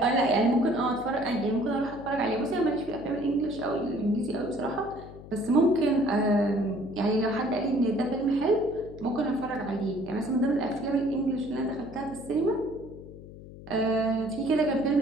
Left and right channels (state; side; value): noise; left; hum, 16 dB below the sound